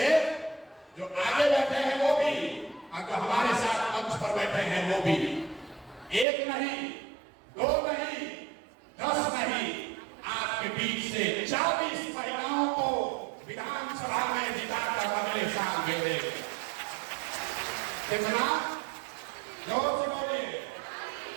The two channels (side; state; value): left; drops out; at 6.2 s